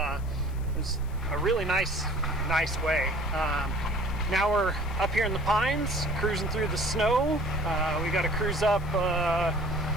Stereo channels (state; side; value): noise; left; hiss, 25 dB below the sound